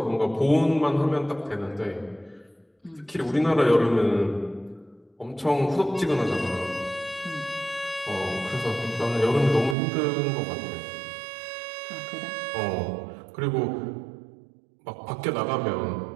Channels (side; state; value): left; drops out; at 9.8 s